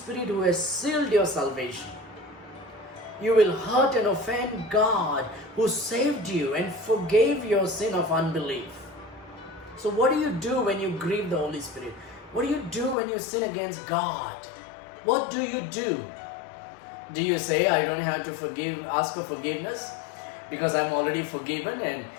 who has sealed your salvation. You will hurt and offend God who saved you and forgave your sin of unbelief. So what do you do when you grieve the Holy Spirit? What do you do when you sin against God? What do you do? Do you say, I don't have to ask for forgiveness because I'm already forgiven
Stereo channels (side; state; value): right; drops out; at 13.0 s